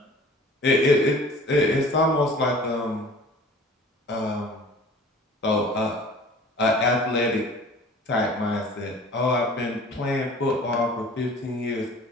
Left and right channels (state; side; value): normal; both; correlation 0.46